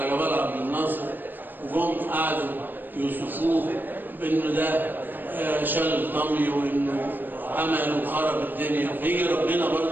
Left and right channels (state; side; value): late; left; 0.091 ms